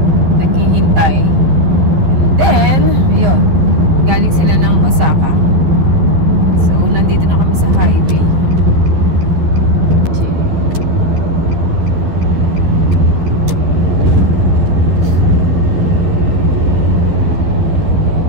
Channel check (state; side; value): late; left; 12 ms